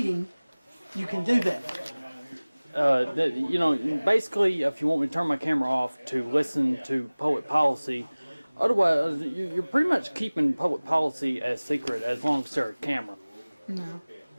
you can do that. You know, basically, if you want me to turn my camera off to listen to public policy, otherwise, you're pretty much keeping public policy as secret as long as there's a camera. No.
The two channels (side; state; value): both; inverted; correlation -1.00